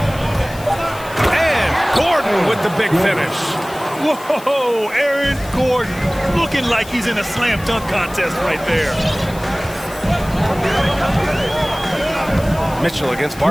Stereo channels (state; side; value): noise; left; hiss, 18 dB below the sound